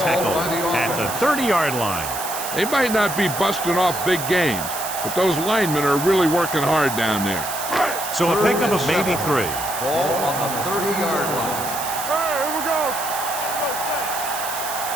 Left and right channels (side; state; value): right; noise; hiss, 7 dB below the sound